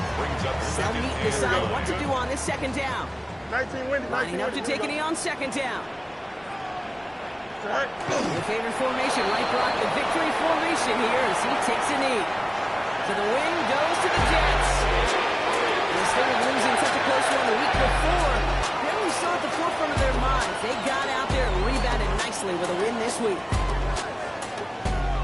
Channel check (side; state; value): both; identical; correlation 1.00